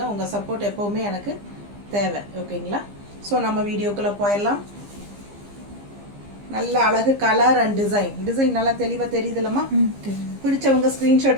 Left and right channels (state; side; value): late; left; 15 ms